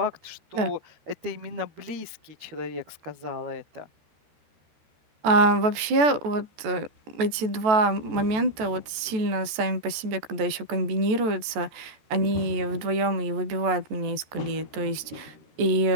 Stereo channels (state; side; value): late; left; 14 ms